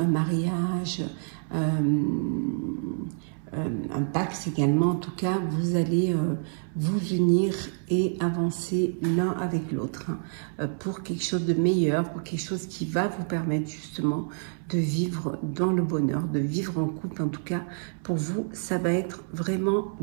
mariage, un pacte également. En tout cas, vous allez vous unir et avancer l'un avec l'autre pour quelque chose de meilleur, pour quelque chose qui va vous permettre justement de vivre dans le bonheur, de vivre en couple. En tout cas, pour vous, ça va être vraiment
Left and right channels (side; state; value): left; silent; 60 dB below the other